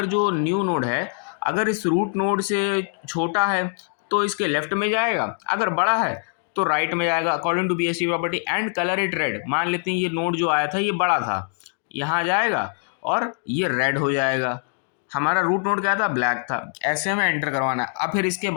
जो न्यू नोड है अगर इस रूट नोड से छोटा है तो इसके लेफ्ट में जाएगा, अगर बड़ा है तो राइट में जाएगा according to BST property. And colour it red, मान लेते हैं ये नोड जो आया था ये बड़ा था, यहाँ जाएगा और ये रेड हो जाएगा। हमारा रूट नोड क्या था, ब्लैक था। ऐसे हमें एंटर करवाना है। अब फिर इसके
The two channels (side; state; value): right; silent; 57 dB below the other